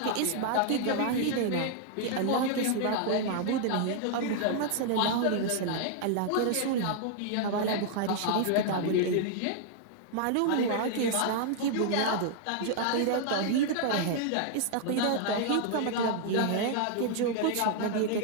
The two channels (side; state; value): both; different; correlation 0.00